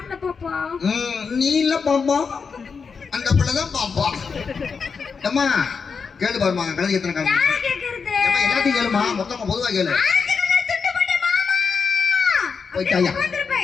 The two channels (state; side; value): quieter; right; 5.5 dB